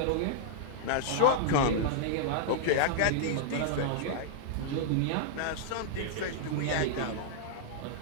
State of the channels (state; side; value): different; both; correlation -0.02